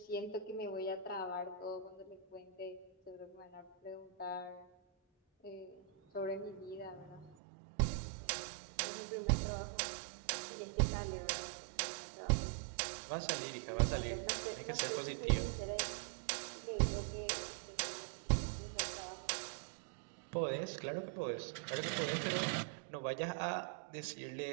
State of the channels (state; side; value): drops out; left; at 7.4 s